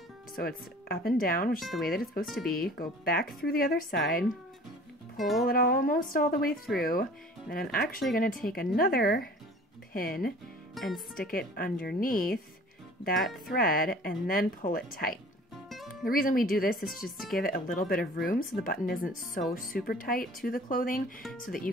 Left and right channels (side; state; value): both; normal; correlation 0.47